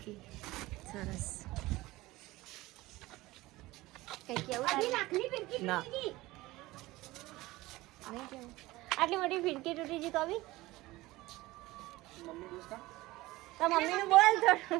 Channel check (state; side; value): quieter; left; 19.0 dB